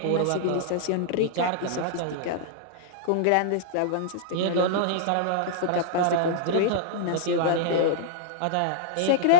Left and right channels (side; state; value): both; different; correlation -0.01